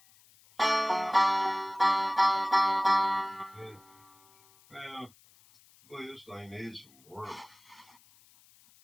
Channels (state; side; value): noise; left; hiss, 29 dB below the sound